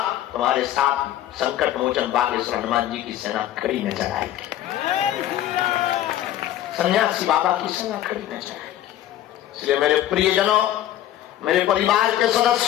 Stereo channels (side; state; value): right; quieter; 12.8 dB